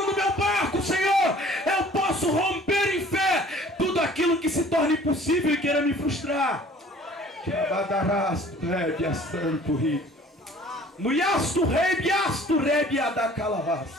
no meu barco, Senhor, eu posso romper em fé tudo aquilo que se torna impossível e queira me frustrar.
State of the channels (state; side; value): normal; both; correlation 0.51